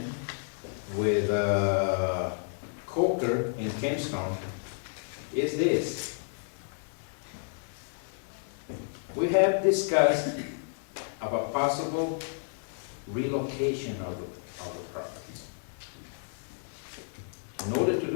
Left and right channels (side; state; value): right; silent; 57 dB below the other